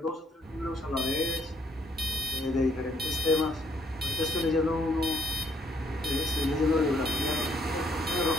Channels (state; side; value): normal; both; correlation 0.67